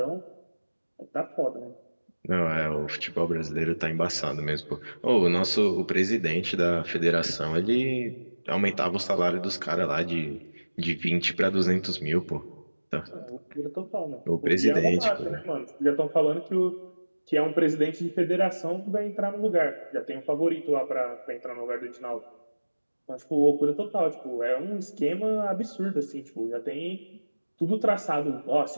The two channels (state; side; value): inverted; both; correlation -1.00